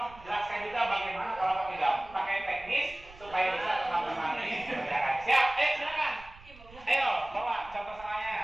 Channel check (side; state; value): right; noise; rumble, 21 dB below the sound